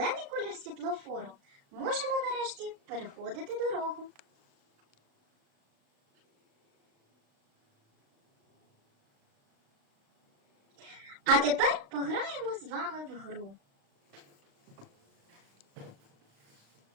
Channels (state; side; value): late; left; 36 ms